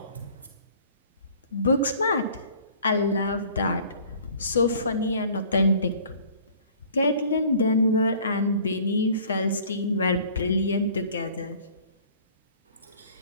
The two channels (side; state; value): both; inverted; correlation -0.51